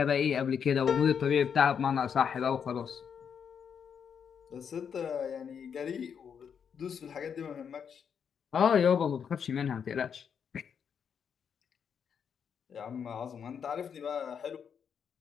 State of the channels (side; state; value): right; quieter; 7.3 dB